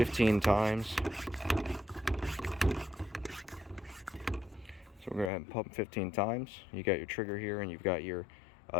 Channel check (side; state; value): right; drops out; at 5.3 s